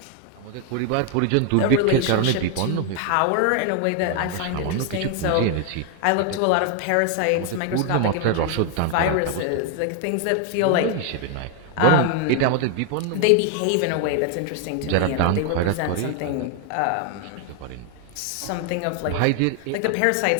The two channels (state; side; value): different; both; correlation 0.00